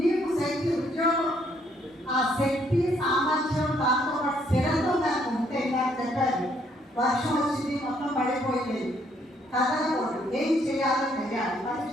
శక్తి, ఉద్యోగం, ఆ శక్తి, సామర్థ్యం, దాంతో పాటు స్థిరత్వం నాకు ఉంటే నాకు చెప్పారు. వర్షం వచ్చింది, మొత్తం పడిపోయింది, కదలకూడదు, ఏం చేయాలో తెలియాలి.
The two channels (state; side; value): normal; both; correlation 0.68